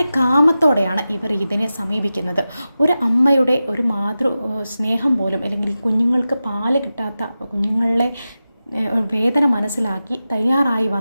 കാമത്തോടെയാണ് ഇവർ ഇതിനെ സമീപിക്കുന്നത്. ഒരു അമ്മയുടെ ഒരു മാതൃ സ്നേഹം പോലും അല്ലെങ്കിൽ കുഞ്ഞുങ്ങൾക്ക് പാല് കിട്ടാത്ത കുഞ്ഞുങ്ങളെ വേദന മനസ്സിലാക്കി തയ്യാറായി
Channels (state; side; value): inverted; both; correlation -0.93